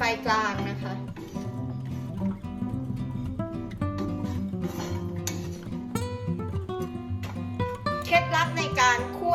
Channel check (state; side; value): identical; both; correlation 1.00